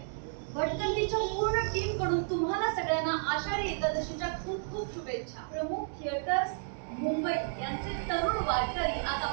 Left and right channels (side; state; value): left; silent; digital silence